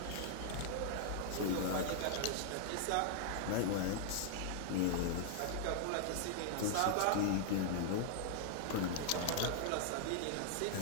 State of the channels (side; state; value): both; different; correlation 0.00